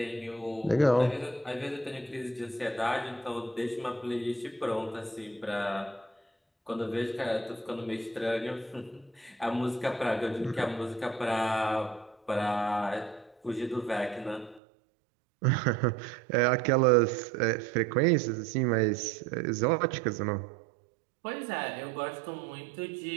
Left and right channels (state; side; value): drops out; left; at 14.6 s